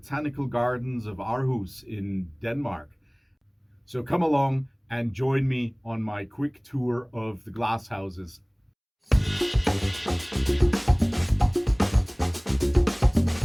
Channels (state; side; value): identical; both; correlation 1.00